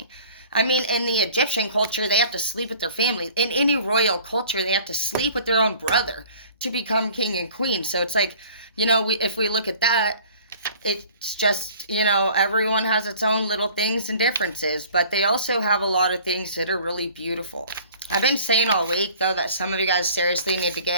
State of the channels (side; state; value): both; inverted; correlation -0.49